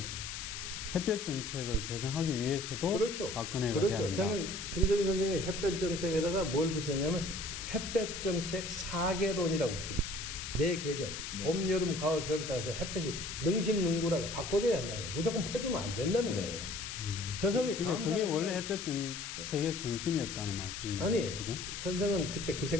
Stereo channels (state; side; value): noise; left; hiss, 7 dB below the sound